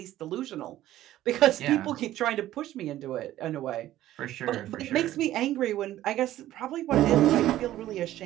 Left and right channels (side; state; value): left; quieter; 13.9 dB